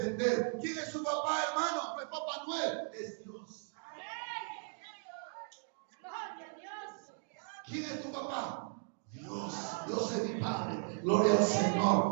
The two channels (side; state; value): left; silent; 53 dB below the other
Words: ¿Quién es su papá, hermano? No es Papá Noel, es Dios. ¿Quién es tu papá? Dios, Dios es mi Padre. Gloria al